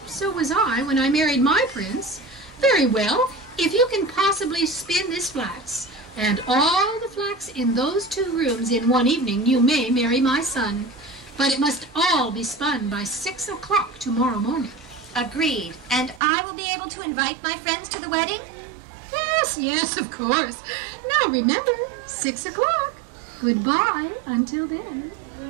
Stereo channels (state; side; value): drops out; left; at 16.2 s